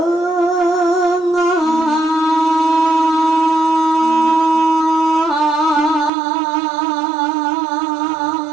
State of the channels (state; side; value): drops out; left; at 6.1 s